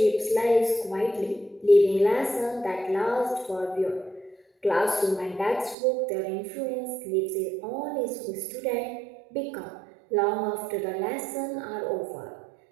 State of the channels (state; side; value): drops out; left; at 5.8 s